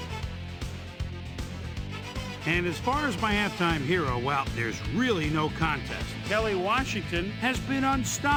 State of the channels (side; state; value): both; identical; correlation 1.00